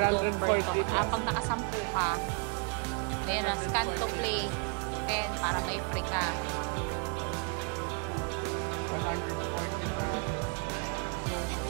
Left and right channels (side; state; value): left; quieter; 34.5 dB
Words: Pag nakasampu ka, ayan na, scan to play 10 para may free ka. So,